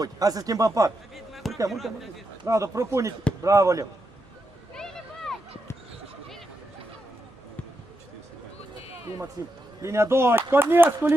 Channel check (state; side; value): normal; both; correlation 0.85